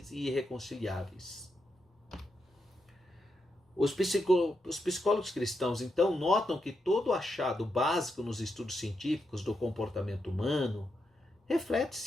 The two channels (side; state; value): both; normal; correlation 0.84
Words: e irreconciliáveis. Os psicólogos cristãos, então, notam que todo achado básico nos estudos científicos do comportamento humano reflete,